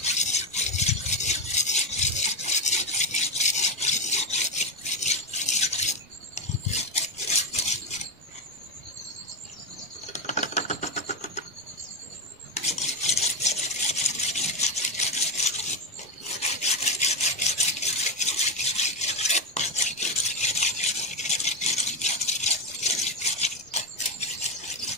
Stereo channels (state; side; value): normal; both; correlation 0.10